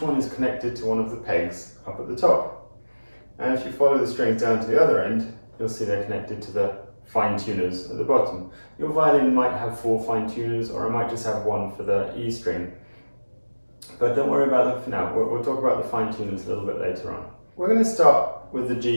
one is connected to one of the pegs up at the top. And if you follow the strings down to the other end, you'll see they're connected to the fine tuners at the bottom. Your violin might have 4 fine tuners, or it might just have 1 for the E string. But don't worry about them for now. We'll talk about the fine tuners a little bit later on. We're going to start with the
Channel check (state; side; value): inverted; both; correlation -1.00